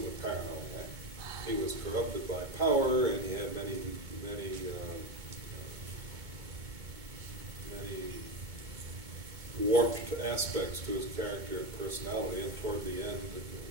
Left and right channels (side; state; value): left; late; 2.2 ms